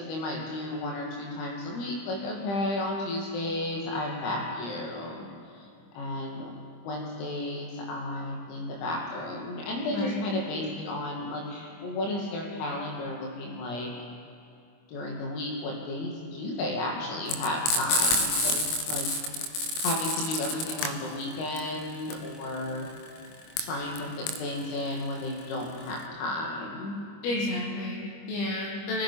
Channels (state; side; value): late; right; 25 ms